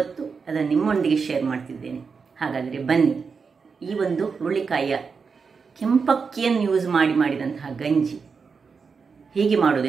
ಅದನ್ನು ನಿಮ್ಮೊಂದಿಗೆ ಶೇರ್ ಮಾಡ್ತಿದ್ದೇನೆ. ಹಾಗಾದರೆ ಬನ್ನಿ, ಈ ಒಂದು ಹುರುಳಿಕಾಯಿಯ ಕೆಂಪಕ್ಕಿಯನ್ನು ಯೂಸ್ ಮಾಡಿದಂತಹ ಗಂಜಿ ಹೇಗೆ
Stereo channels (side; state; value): left; quieter; 5.3 dB